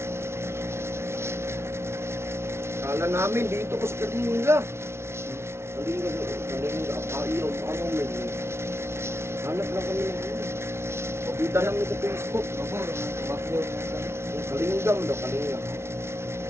Kala namin dito ko sa Kalinga. Kalinga, Apayo, ano may. Hanap lang kami ng ano. Pabida lang sa Facebook. Ako, bakyo na sa. Yung Kalingam daw, Kalinga.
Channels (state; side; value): late; left; 0.13 ms